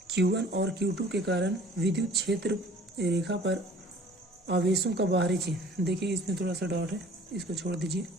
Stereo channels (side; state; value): both; normal; correlation 0.50